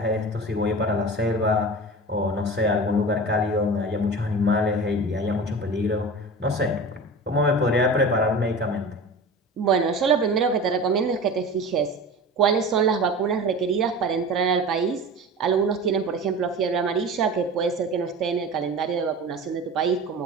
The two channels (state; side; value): normal; both; correlation 0.33